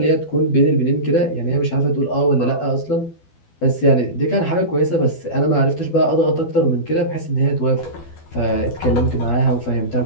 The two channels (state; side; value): late; right; 12 ms